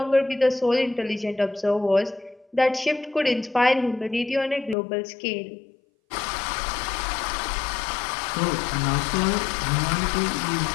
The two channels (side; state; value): right; drops out; at 4.8 s